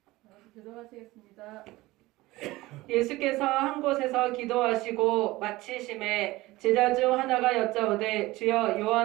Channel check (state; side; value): quieter; left; 19.2 dB